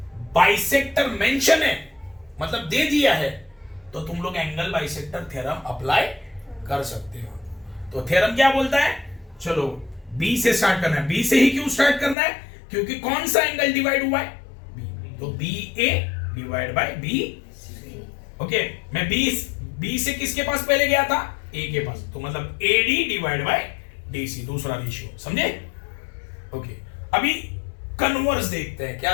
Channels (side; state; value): right; drops out; at 12.2 s